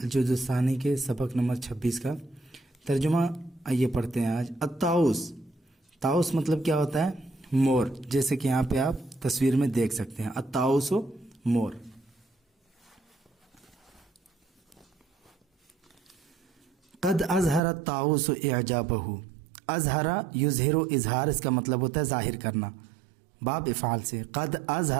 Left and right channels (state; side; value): drops out; left; at 17.6 s